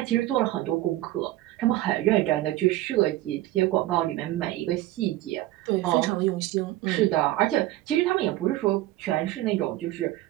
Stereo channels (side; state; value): left; quieter; 15.9 dB